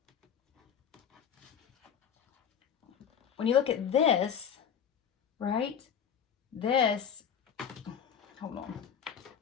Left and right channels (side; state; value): right; quieter; 8.1 dB